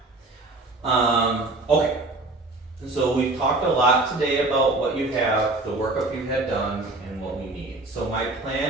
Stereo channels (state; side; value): quieter; left; 3.0 dB